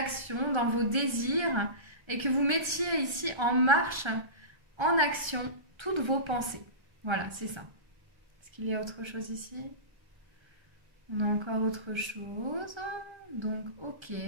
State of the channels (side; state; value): left; late; 1.3 ms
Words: dans vos désirs, et que vous mettiez ici en marche, en action, toutes vos pensées. Voilà, c'est ça. Est-ce qu'il y a autre chose ici? On a encore autre chose. Donc, ok.